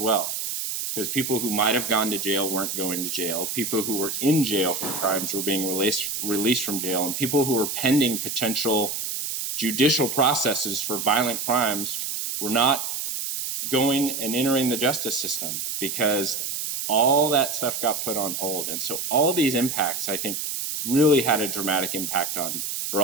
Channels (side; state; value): right; noise; hiss, 3 dB below the sound